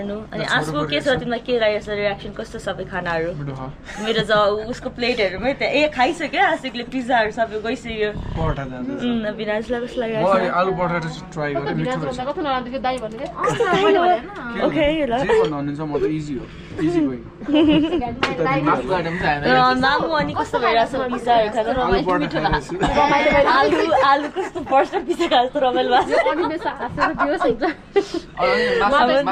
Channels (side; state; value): both; identical; correlation 1.00